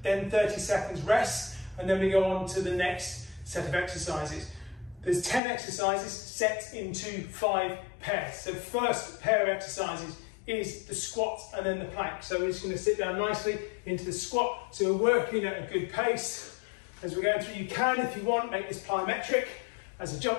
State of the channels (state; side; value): drops out; right; at 5.4 s